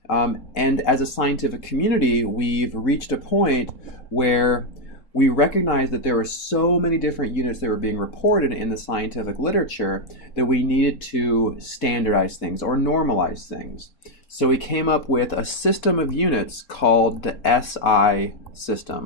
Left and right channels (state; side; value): late; right; 3.7 ms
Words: And as a scientific community, we've reached a point where we recognize that there were so many different units that were being reported in the scientific literature that we needed to standardize things or normalize things. So we came up with a system of units called the SI